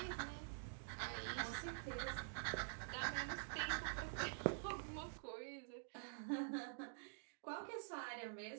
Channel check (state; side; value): silent; left; digital silence